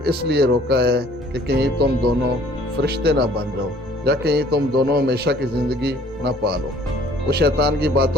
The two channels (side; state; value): both; normal; correlation 0.56